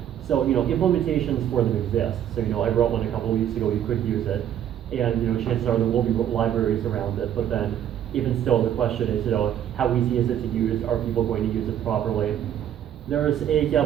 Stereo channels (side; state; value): left; quieter; 10.4 dB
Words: So, implementations for them exist. So, I wrote one a couple weeks ago, you could use it. And, chances are there will be libraries around it, but then even still, the question is, how easy is it to use? Are people going to use it properly? There's